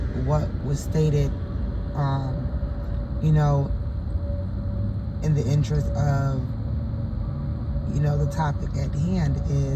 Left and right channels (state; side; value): identical; both; correlation 1.00